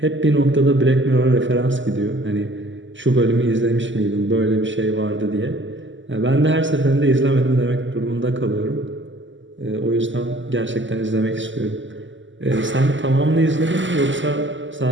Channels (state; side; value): late; left; 0.55 ms